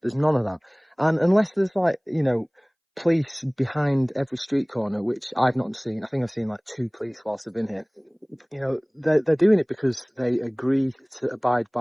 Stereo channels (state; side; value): identical; both; correlation 1.00